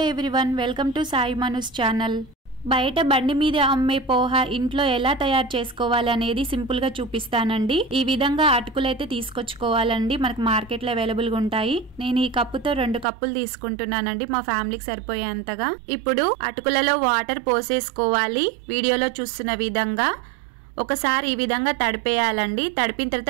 everyone, welcome to Sai మనూస్ channel. బయట బండి మీద అమ్మే పోహా ఇంట్లో ఎలా తయారు చేసుకోవాలి అనేది సింపుల్ గా చూపిస్తానండి. ఈ విధంగా అటుకులైతే తీసుకొచ్చుకోవాలండి, మనకు మార్కెట్ లో అవైలబుల్ గా ఉంటాయి. నేను ఈ కప్పుతో 2 కప్పులు తీసుకుంటున్నానండి, మా ఫ్యామిలీకి సరిపోయేంతగా. ఇప్పుడు అటుకులలో వాటర్ పోసేసుకోవాలి. వీడియోలో చూస్తున్న విధంగా ఒకసారి ఈ విధంగా తడిపేయాలండి. తడిపిన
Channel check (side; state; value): left; drops out; at 13.1 s